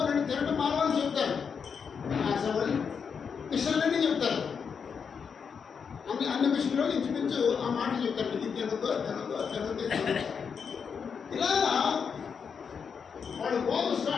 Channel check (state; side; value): quieter; right; 6.4 dB